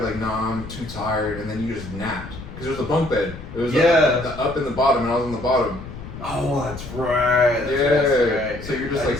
like, nah, I'm too tired. And then you just napped. Because there was a bunk bed. It was the up and the bottom, and I was on the bottom. Oh, that's right. That's right. So you're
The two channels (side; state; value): left; noise; rumble, 12 dB below the sound